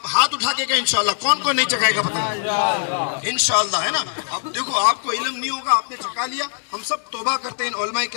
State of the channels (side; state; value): right; silent; digital silence